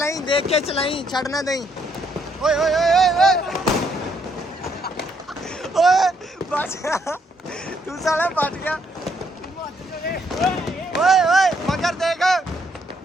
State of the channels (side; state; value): both; normal; correlation 0.71